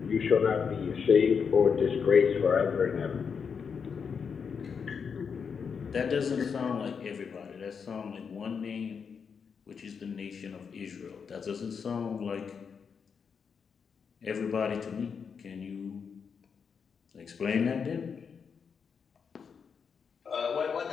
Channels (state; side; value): quieter; right; 6.3 dB